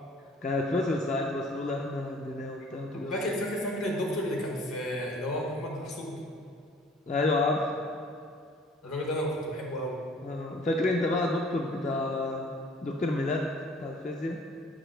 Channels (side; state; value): both; normal; correlation 0.53